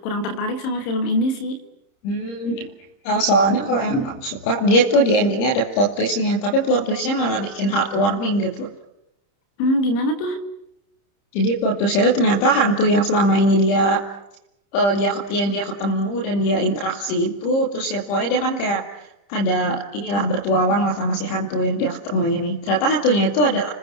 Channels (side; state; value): right; late; 30 ms